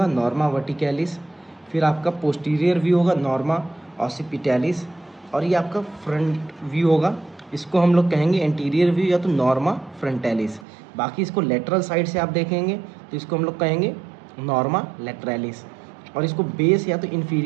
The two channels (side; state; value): left; drops out; at 10.7 s